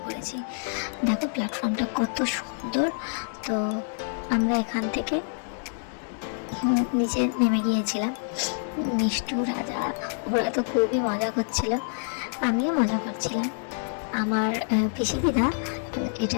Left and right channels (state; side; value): silent; right; digital silence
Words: করেছি। দেখো প্ল্যাটফর্মটা কত সুন্দর। তো আমরা এখান থেকে নিচে নেমে গিয়েছিলাম। মিষ্টু, রাজা ওরা তো খুবই মজা করছিল, আমিও মজা করছিলাম। আমার পিসি দিদা